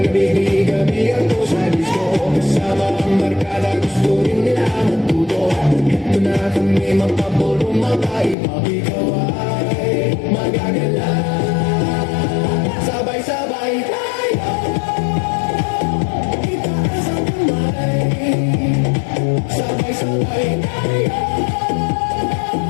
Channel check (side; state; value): right; drops out; at 8.3 s